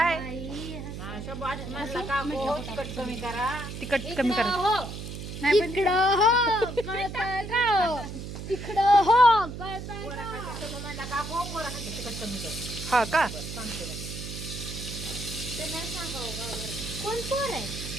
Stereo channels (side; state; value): right; noise; hum, 8 dB below the sound